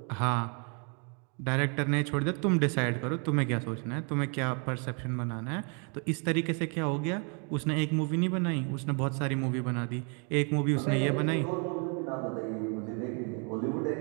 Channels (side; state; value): left; quieter; 37.4 dB